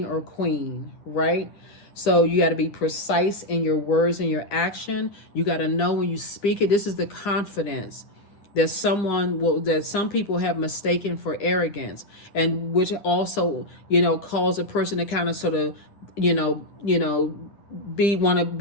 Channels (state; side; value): late; right; 9.9 ms